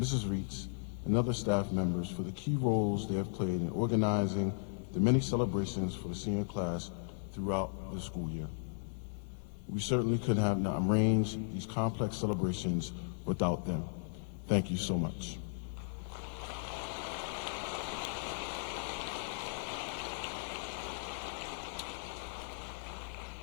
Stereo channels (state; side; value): silent; right; digital silence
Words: Reitz, and other staff members for the key roles they have played in organizing the many celebrations for the senior class throughout the school year. We certainly could have not arranged these complex celebrations without them. Thank you so much.